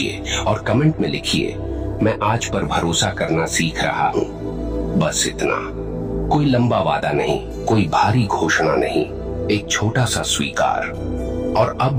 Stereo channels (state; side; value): identical; both; correlation 1.00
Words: और कमेंट में लिखिए मैं आज पर भरोसा करना सीख रहा हूँ। बस इतना। कोई लंबा वादा नहीं, कोई भारी घोषणा नहीं, एक छोटा सा स्वीकार। और